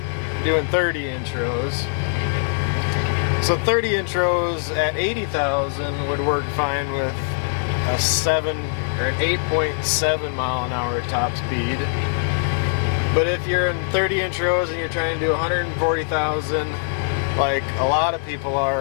doing 30-inch rows. So 30-inch rows at 80,000 would work fine with a 7 or an 8.7 mile an hour top speed. But if you're in 30-inch rows and you're trying to do 140,000, like a lot of people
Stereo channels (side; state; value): right; silent; digital silence